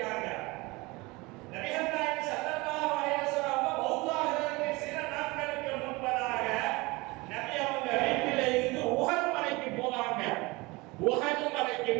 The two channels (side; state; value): left; quieter; 23.6 dB